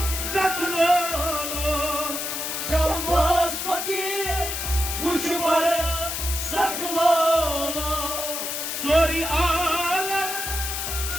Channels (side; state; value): left; noise; hiss, 3 dB below the sound